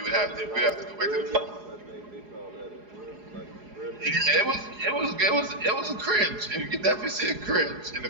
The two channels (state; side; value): late; left; 4.8 ms